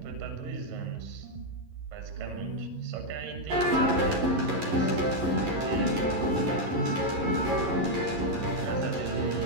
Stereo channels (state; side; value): late; left; 11 ms